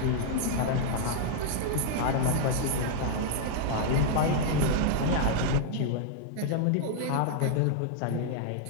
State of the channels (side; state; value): both; different; correlation -0.01